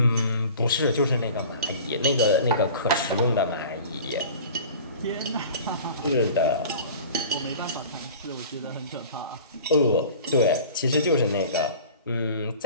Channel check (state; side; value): inverted; both; correlation -0.41